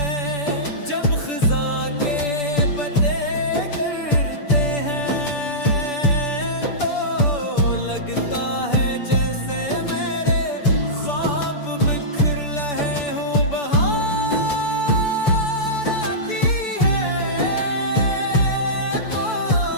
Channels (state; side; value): late; right; 6.9 ms